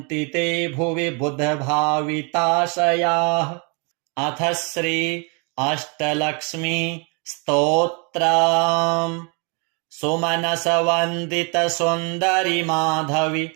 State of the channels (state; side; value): quieter; left; 34.4 dB